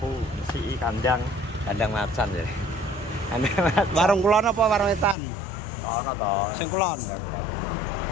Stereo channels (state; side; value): drops out; right; at 5.2 s